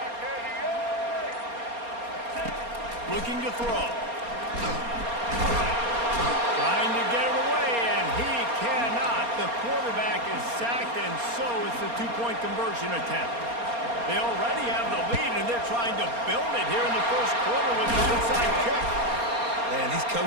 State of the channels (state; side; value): late; left; 4.3 ms